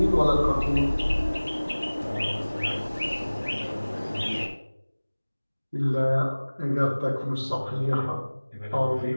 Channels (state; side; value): inverted; both; correlation -1.00